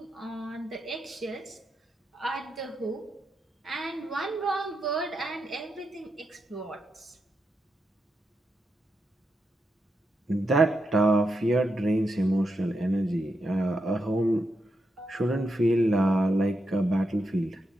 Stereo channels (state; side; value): normal; both; correlation 0.85